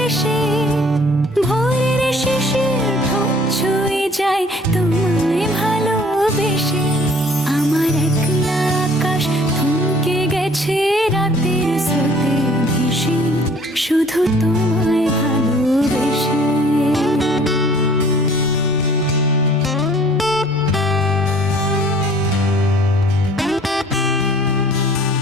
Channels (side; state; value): both; normal; correlation 0.54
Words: এসে, ভোরের শিশির ঠোঁট ছুঁয়ে যায় তোমায় ভালোবেসে। আমার একলা আকাশ থমকে গেছে রাতের স্রোতে ভেসে, শুধু তোমায় ভালোবেসে।